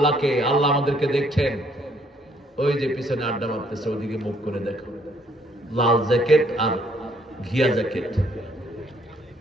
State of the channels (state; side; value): normal; both; correlation 0.66